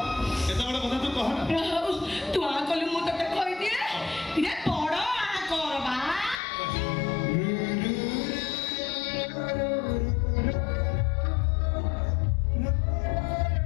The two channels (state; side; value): drops out; right; at 6.4 s